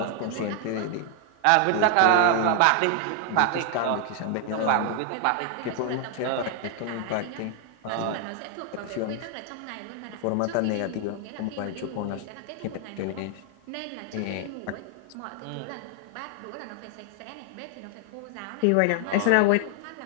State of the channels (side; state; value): both; different; correlation 0.00